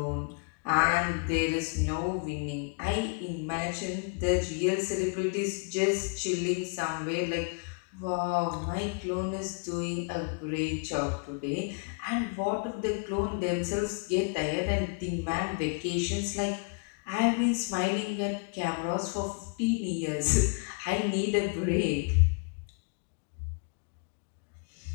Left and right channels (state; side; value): quieter; right; 35.5 dB